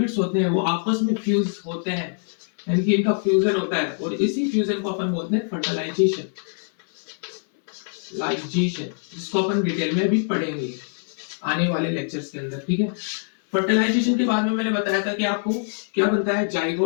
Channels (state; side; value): silent; right; 63 dB below the other